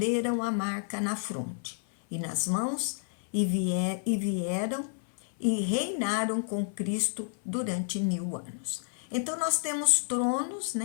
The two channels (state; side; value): silent; right; 55 dB below the other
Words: a marca na fronte e nas mãos, e vieram e reinaram com Cristo durante 1000 anos. Então nós temos tronos,